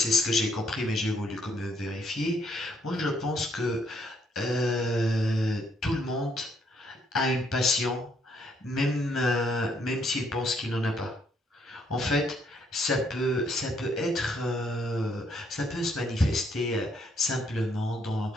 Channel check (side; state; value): both; normal; correlation 0.70